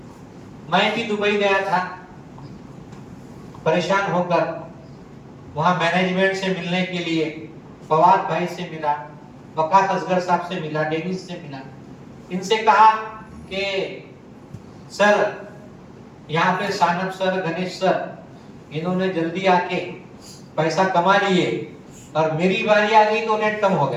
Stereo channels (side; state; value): both; identical; correlation 1.00